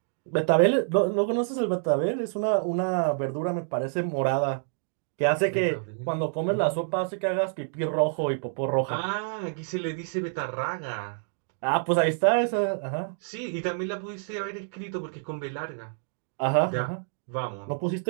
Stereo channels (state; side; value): silent; left; digital silence